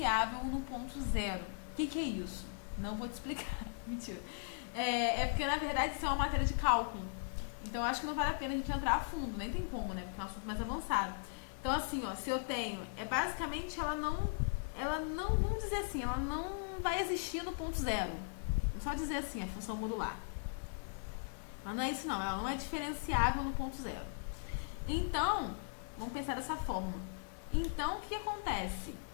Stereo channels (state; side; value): silent; right; 52 dB below the other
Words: no ponto zero. O que é isso? Não vou te explicar. Mentira. Porque, na verdade, isso é uma matéria de cálculo. Então, acho que não vale a pena a gente entrar a fundo. Nem tem como, né? Porque é um assunto mais avançado. Então, assim, ó, se eu tenho... basicamente, ela não... Vamos dizer assim, ela não vai existir no ponto zero. Vamos só dizer assim, a função modular. Mas não é isso, não. Ela não é diferenciável no ponto zero. Então... Vamos pensar dessa forma. Então, o que acontece?